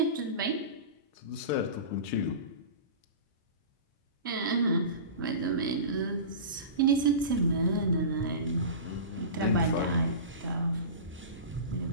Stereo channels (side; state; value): both; inverted; correlation -0.30